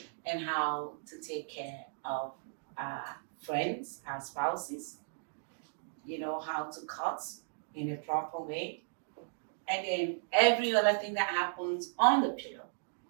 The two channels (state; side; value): silent; left; digital silence